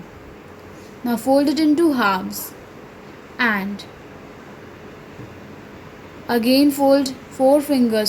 Now fold it into halves and again fold 4 fingers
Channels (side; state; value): both; identical; correlation 1.00